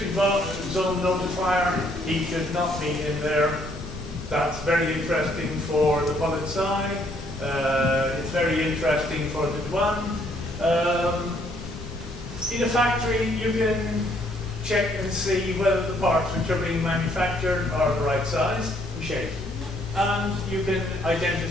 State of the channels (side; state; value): both; normal; correlation 0.67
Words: zone notifier. He should not be in there. That's very interesting for the Polizei. It's very interesting for the douane. In a factory, you can check and see whether the parts which are being manufactured are the right size and shape. And you can